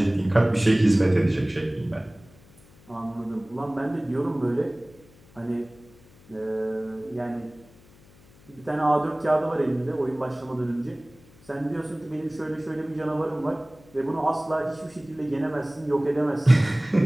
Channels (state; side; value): noise; left; hum, 26 dB below the sound